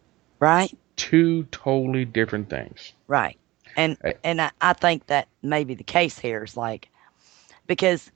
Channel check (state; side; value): quieter; left; 18.9 dB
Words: right? Two totally different things. Right. And Uh, I think that may be the case here is like because